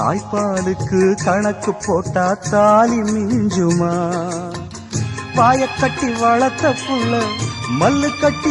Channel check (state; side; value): identical; both; correlation 1.00